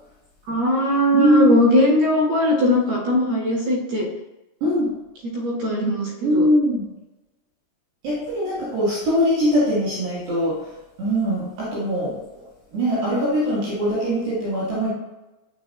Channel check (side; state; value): left; late; 17 ms